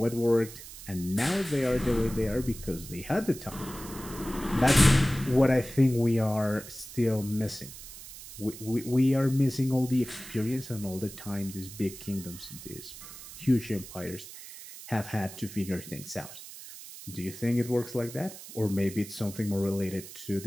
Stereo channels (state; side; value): noise; right; hiss, 14 dB below the sound